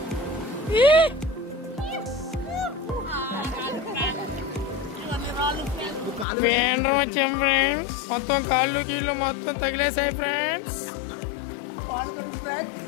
వేండ్రం వచ్చాం friends. మొత్తం కాళ్ళు కీళ్ళు మొత్తం తగిలేసాయి ఫ్రెండ్స్.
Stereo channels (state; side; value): drops out; right; at 6.2 s